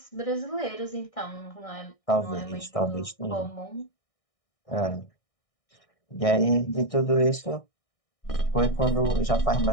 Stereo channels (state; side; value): late; right; 1.6 ms